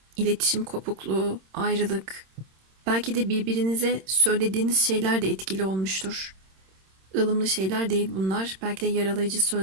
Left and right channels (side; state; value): left; late; 26 ms